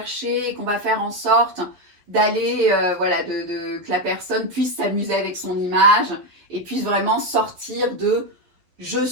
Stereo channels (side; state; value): left; late; 11 ms